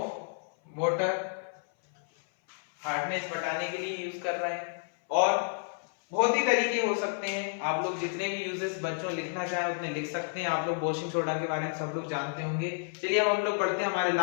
water, hardness बढ़ाने के लिए यूज कर रहे हैं। और बहुत ही तरीके हो सकते हैं, आप लोग जितने भी यूजेस बच्चों लिखना चाहें उतने लिख सकते हैं। आप लोग वॉशिंग सोडा के बारे में सब लोग जानते होंगे। चलिए अब हम लोग पढ़ते हैं हमारे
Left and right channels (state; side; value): silent; right; 57 dB below the other